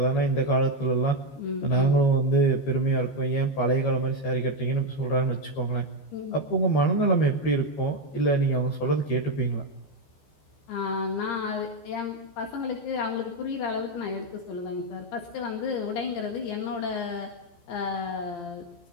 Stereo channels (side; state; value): right; late; 14 ms